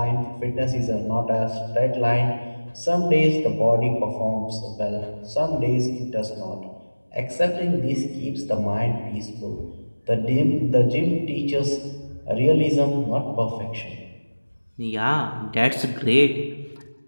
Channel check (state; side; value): inverted; both; correlation -1.00